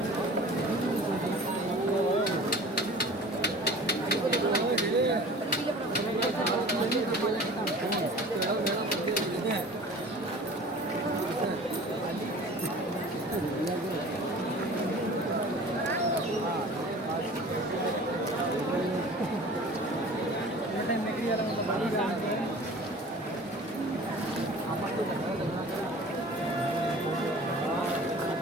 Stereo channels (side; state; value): both; normal; correlation 0.43